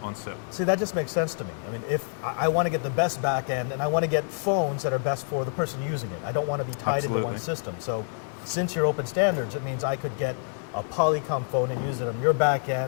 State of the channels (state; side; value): silent; right; 60 dB below the other